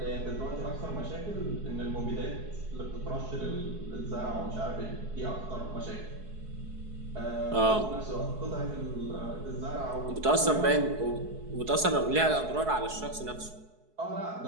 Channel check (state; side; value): late; left; 4.7 ms